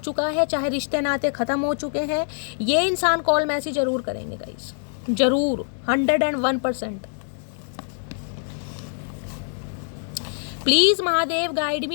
है, चाहे रिश्ते नाते ख़त्म हो चुके हैं, ये इंसान कॉल मैसेज जरूर करेंगे गाइस, जरूर 101%। प्लीज़ महादेव गाइड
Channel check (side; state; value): right; silent; digital silence